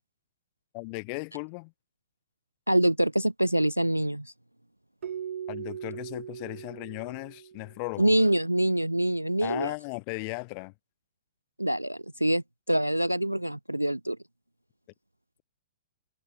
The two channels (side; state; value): both; inverted; correlation -0.93